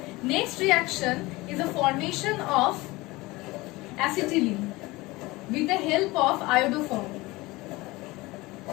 Next reaction is the formation of acetylene with the help of iodoform.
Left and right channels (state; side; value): quieter; right; 21.3 dB